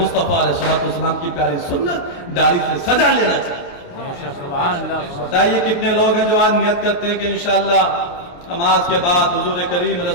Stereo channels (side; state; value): right; late; 28 ms